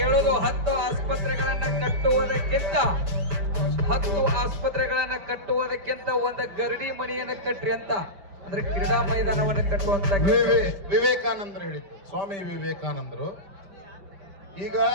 10 ಆಸ್ಪತ್ರೆಗಳನ್ನ ಕಟ್ಟುವುದಕ್ಕಿಂತ ಒಂದು ಗರಡಿ ಮನೆಯನ್ನು ಕಟ್ರಿ ಅಂತ. ಅಂದ್ರೆ ಕ್ರೀಡಾ ಮೈದಾನವನ್ನು ಕಟ್ಟುವಂತ ವಿವೇಕಾನಂದರು ಹೇಳಿದ್ರು, ಸ್ವಾಮಿ ವಿವೇಕಾನಂದರು. ಈಗ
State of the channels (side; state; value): left; late; 5.1 ms